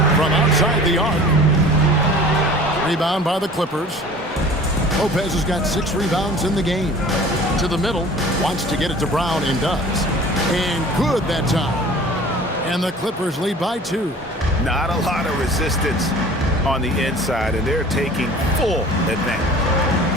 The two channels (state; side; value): normal; both; correlation 0.45